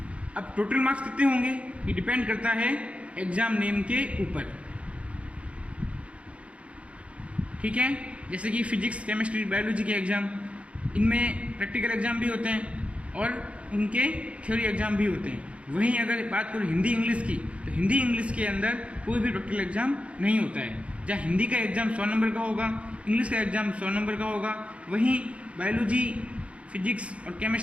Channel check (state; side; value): late; left; 0.062 ms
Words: अब टोटल मार्क्स कितने होंगे ये डिपेंड करता है एग्ज़ाम नेम के ऊपर, ठीक है। जैसे कि फिजिक्स, केमिस्ट्री, बायोलॉजी के एग्ज़ाम, इनमें प्रैक्टिकल एग्ज़ाम भी होते हैं और उनके थ्योरी एग्ज़ाम भी होते हैं। वहीं अगर बात करूँ हिंदी इंग्लिश की, तो हिंदी इंग्लिश के अंदर कोई भी प्रैक्टिकल एग्ज़ाम नहीं होता है। जहाँ हिंदी का एग्ज़ाम 100 नंबर का होगा, इंग्लिश का एग्ज़ाम 100 नंबर का होगा, वहीं बायोलॉजी, फिजिक्स और